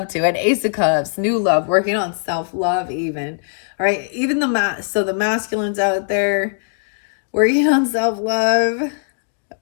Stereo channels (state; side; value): silent; right; digital silence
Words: to. And Ace of Cups, new love, working on self-love even. All right, even so the masculines out there working on self-love.